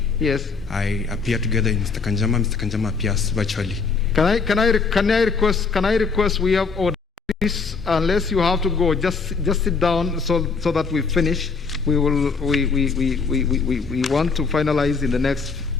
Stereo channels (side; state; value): right; quieter; 4.9 dB